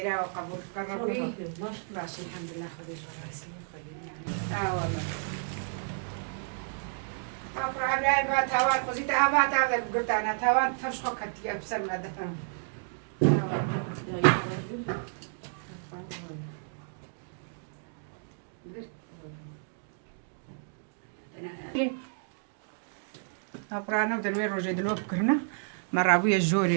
وقبول كربي باش الحمد لله خدي جراسي خدي يعني والله أقرأ عبلاي بات هوان قزيت أبات هذا قلت أنا ثوان تمشخو كتيا بسر ما دفن أقرأنا بدروي روجي دلو بكرنا مرة أبويا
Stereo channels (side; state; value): left; silent; digital silence